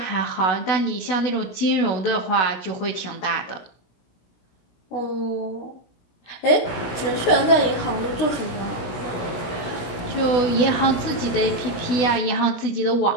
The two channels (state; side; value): late; right; 16 ms